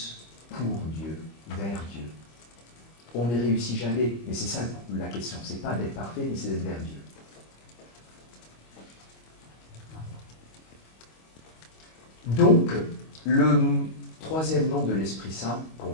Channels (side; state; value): right; late; 25 ms